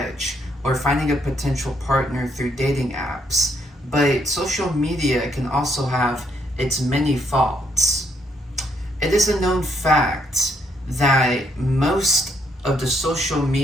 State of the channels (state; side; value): normal; both; correlation 0.73